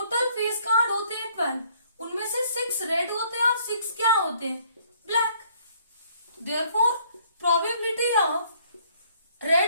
फेस कार्ड होते हैं 12, उनमें से 6 रेड होते हैं और 6 क्या होते हैं? Black. Therefore probability of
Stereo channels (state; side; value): inverted; both; correlation -0.63